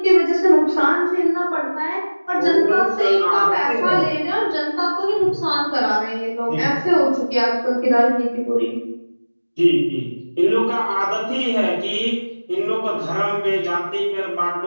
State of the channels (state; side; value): inverted; both; correlation -1.00